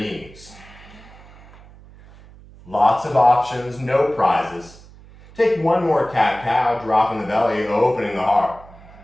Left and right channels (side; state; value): right; noise; hum, 22 dB below the sound